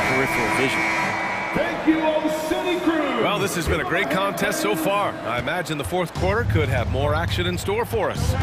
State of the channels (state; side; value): identical; both; correlation 1.00